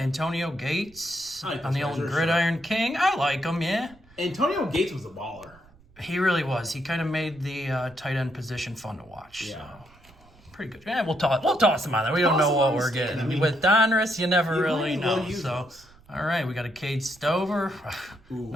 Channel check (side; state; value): right; noise; rumble, 27 dB below the sound